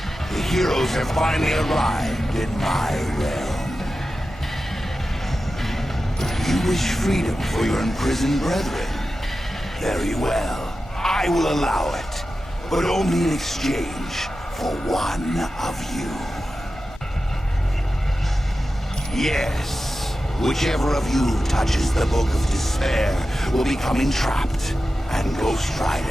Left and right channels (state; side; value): normal; both; correlation 0.93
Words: The heroes have finally arrived in my realm. You wish freedom for your imprisoned brethren? Very well. I will allow it, but only in exchange for one of you. Yes, whichever of you touches the Book of Despair will become entrapped, and Ghost